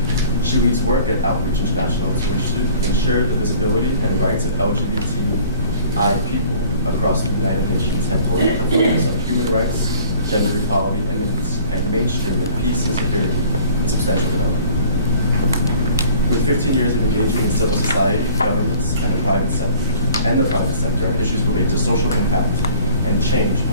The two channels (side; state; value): both; inverted; correlation -0.51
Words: She leads work at Outreach International to ensure the visibility and rights of LGBTI people across the United Nations headquarters with a focus on human rights, gender equality, and mainstreaming peace and security and substantial development. With 15 years of engaging in civil society, governments, and the private sector on issues related to social impact and change,